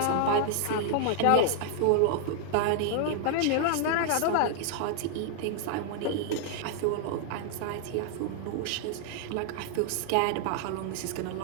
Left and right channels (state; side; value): different; both; correlation 0.00